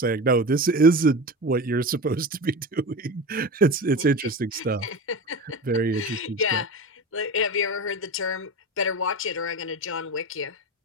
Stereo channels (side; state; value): both; normal; correlation 0.27